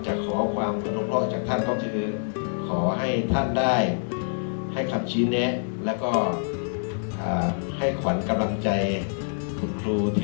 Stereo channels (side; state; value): right; silent; 61 dB below the other